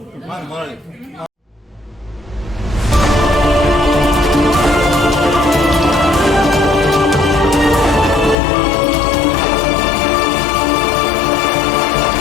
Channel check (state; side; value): drops out; right; at 8.3 s